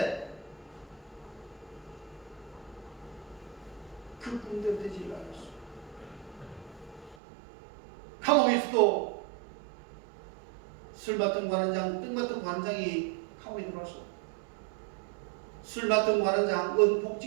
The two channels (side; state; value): left; drops out; at 7.2 s